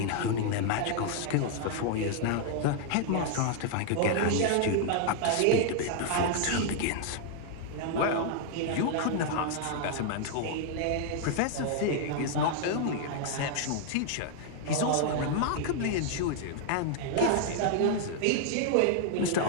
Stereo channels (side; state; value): both; different; correlation 0.00